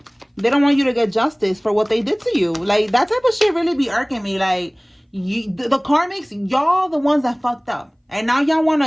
They don't want you to get justice for what they did to you. Like that type of shit really be irking me. Like the karmics, y'all the ones that fucked up, and now y'all want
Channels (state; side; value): identical; both; correlation 1.00